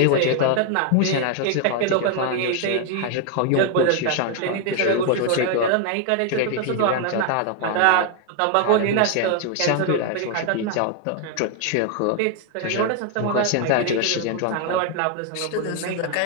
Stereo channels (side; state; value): both; different; correlation 0.00